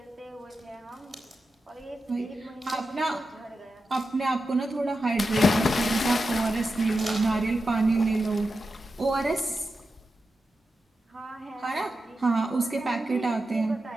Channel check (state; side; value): normal; both; correlation 0.90